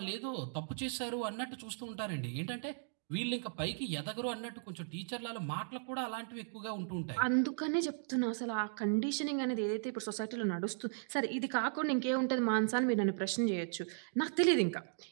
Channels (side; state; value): left; silent; digital silence